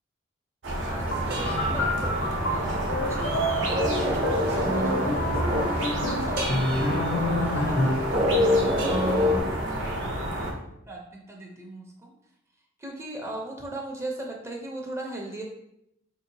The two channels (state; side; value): normal; both; correlation 0.40